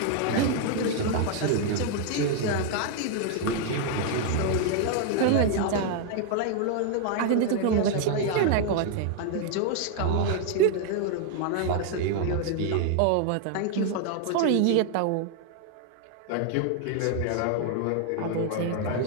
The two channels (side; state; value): both; different; correlation 0.00